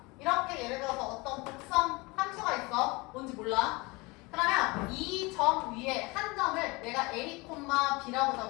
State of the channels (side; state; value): right; quieter; 24.9 dB